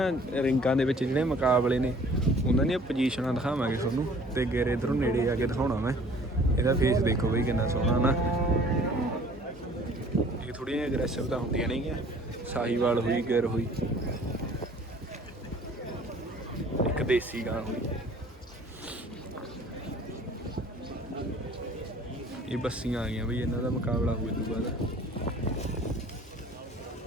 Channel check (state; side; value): normal; both; correlation 0.52